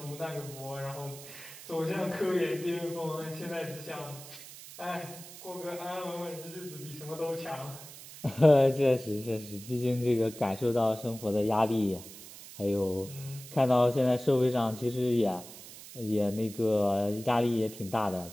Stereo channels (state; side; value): noise; right; hiss, 15 dB below the sound